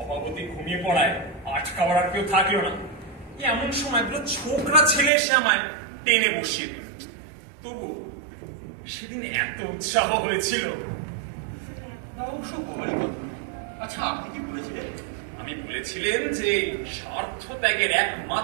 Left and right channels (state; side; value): drops out; left; at 5.1 s